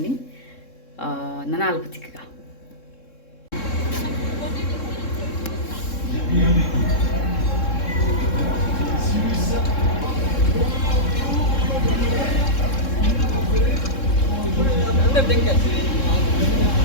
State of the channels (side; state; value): right; late; 3.7 ms